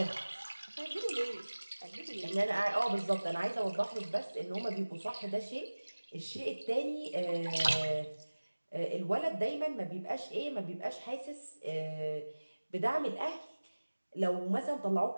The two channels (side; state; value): both; inverted; correlation -1.00